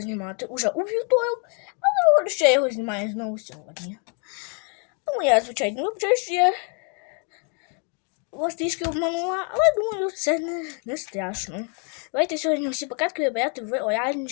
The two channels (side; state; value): right; quieter; 38.2 dB